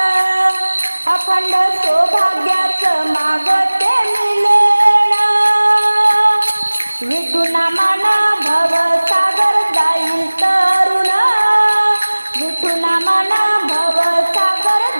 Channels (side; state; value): both; inverted; correlation -1.00